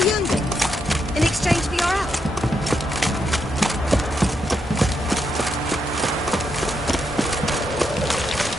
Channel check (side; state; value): both; normal; correlation 0.80